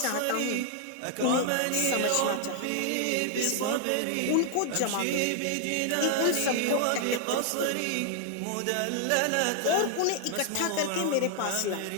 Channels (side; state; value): both; different; correlation 0.00